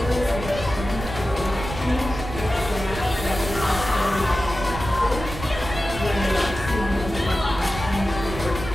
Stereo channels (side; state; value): right; noise; rumble, 8 dB below the sound